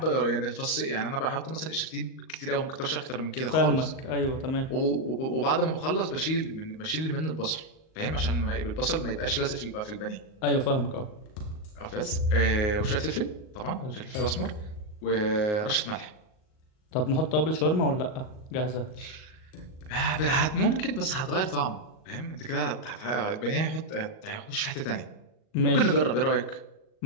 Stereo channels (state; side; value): late; right; 38 ms